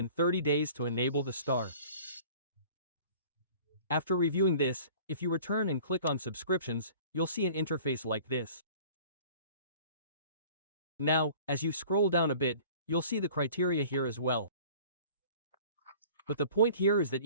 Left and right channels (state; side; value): inverted; both; correlation -0.47